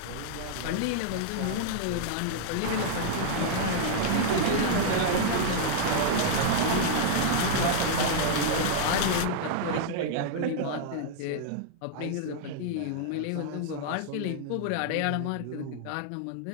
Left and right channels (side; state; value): both; different; correlation -0.01